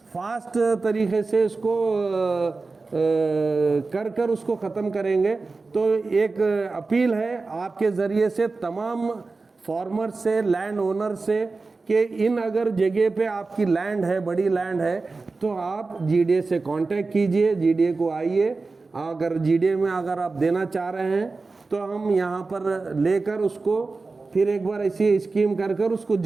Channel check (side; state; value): left; quieter; 3.9 dB